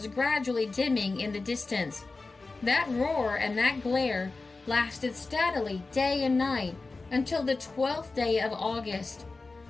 gradually dimming in the distance. That roar and that glare lasted steadily day and night, until the 12th day of August.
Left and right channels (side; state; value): right; quieter; 3.7 dB